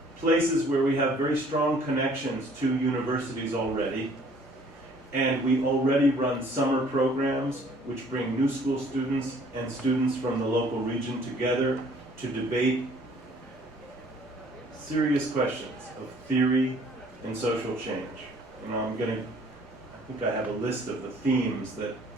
places where we have very strong connections to universities already. And we already run summer programs which bring new school students and students from the local region together to debate serious questions of theory and social change. And I think I have a list of the themes that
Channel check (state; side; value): normal; both; correlation 0.57